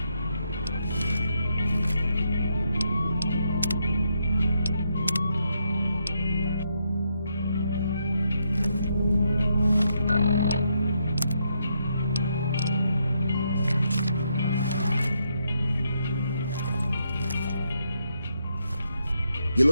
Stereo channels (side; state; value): both; inverted; correlation -0.79